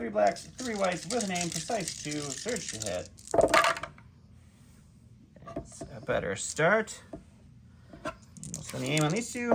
blacks, 3 whites with an aim, precise 2, surge to hit. That's a better start. We'll spend the aim on these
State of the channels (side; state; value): both; identical; correlation 1.00